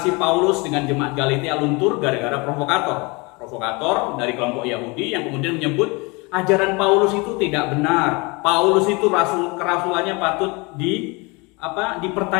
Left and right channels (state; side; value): quieter; right; 27.4 dB